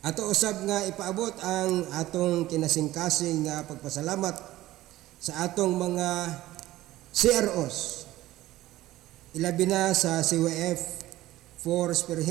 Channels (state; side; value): quieter; left; 16.0 dB